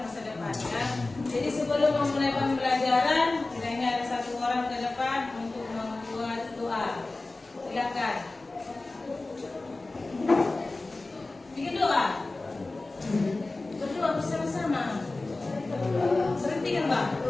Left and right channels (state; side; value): quieter; right; 3.2 dB